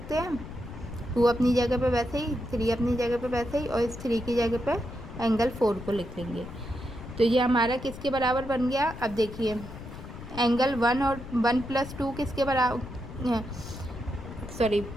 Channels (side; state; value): left; noise; rumble, 12 dB below the sound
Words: हैं, 2 अपनी जगह पे वैसे ही, 3 अपनी जगह पे वैसे ही, और इस 3 की जगह पे एंगल 4 को लिख लेंगे। तो ये हमारा किसके बराबर बन गया। अब देखिए एंगल 1 और 1 प्लस 2 किसके बराबर, सॉरी